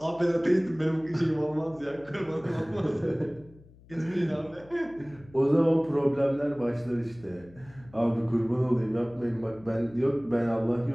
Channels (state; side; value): noise; left; hum, 24 dB below the sound